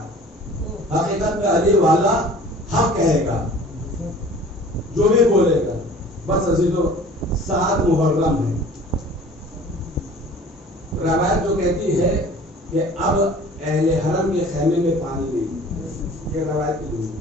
حقیقت میں علی والا حق کہے گا جو بھی بولے گا. بس عزیزو 7 محرم ہے. روایت جو کہتی ہے کہ اب اہل حرم کے خیمے میں پانی نہیں. یہ روایت کی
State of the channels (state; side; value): normal; both; correlation 0.46